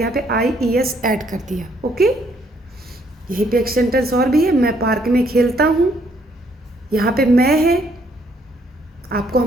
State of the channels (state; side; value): normal; both; correlation 0.68